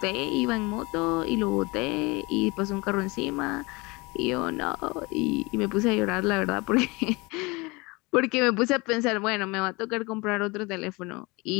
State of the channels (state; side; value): quieter; right; 25.4 dB